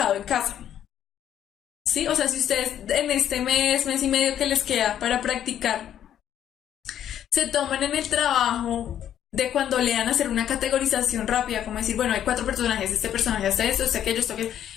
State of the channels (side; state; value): right; quieter; 10.4 dB